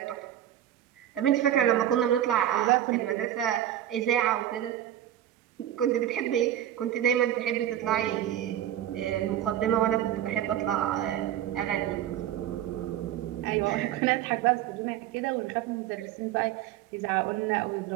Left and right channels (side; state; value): left; quieter; 11.7 dB